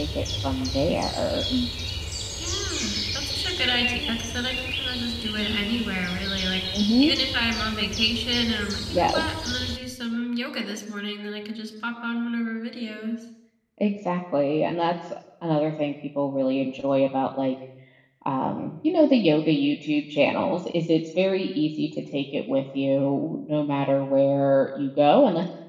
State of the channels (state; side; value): identical; both; correlation 1.00